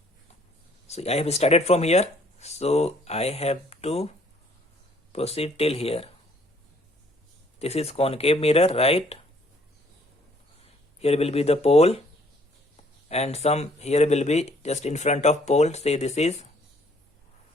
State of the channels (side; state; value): both; normal; correlation 0.62